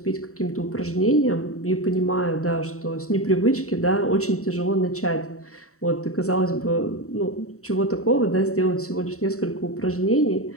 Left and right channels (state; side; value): late; right; 0.64 ms